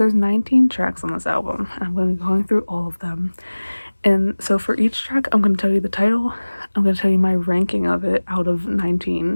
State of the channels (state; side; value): inverted; both; correlation -1.00